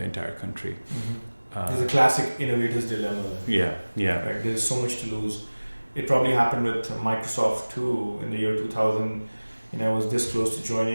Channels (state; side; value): inverted; both; correlation -1.00